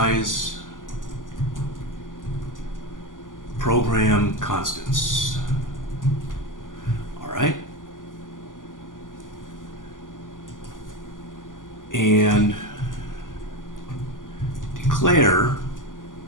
program constants. All right. And declare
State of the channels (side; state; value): right; late; 0.88 ms